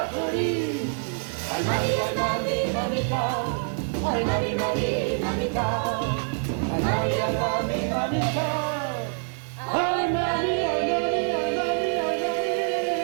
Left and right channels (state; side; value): silent; left; 61 dB below the other